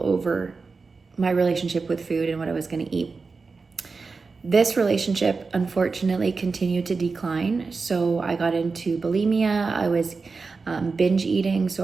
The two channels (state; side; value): quieter; left; 4.4 dB